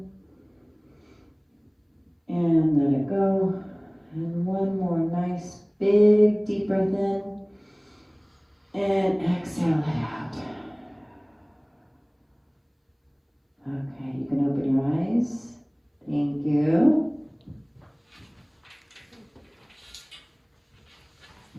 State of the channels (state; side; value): identical; both; correlation 1.00